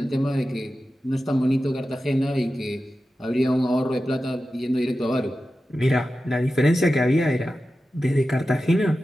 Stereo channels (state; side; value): normal; both; correlation 0.93